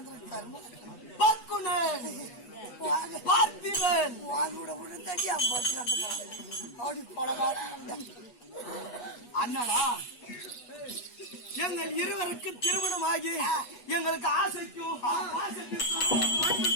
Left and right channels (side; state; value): right; late; 8.3 ms